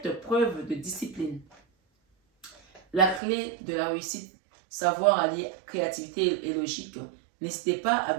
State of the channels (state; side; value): drops out; left; at 3.2 s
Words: preuve de discipline. La clé de la réussite, savoir allier créativité et logique. N'hésitez pas à